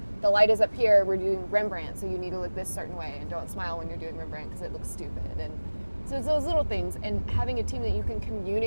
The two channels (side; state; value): both; inverted; correlation -1.00